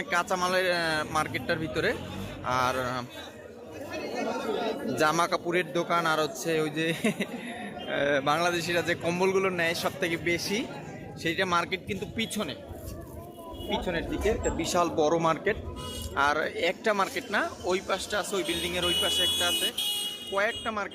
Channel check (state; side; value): identical; both; correlation 1.00